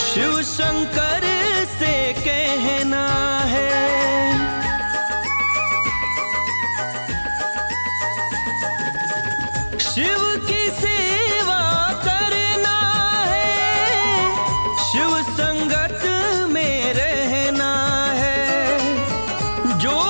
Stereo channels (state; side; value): inverted; both; correlation -1.00